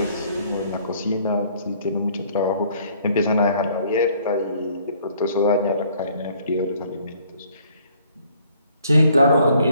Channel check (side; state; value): both; inverted; correlation -0.61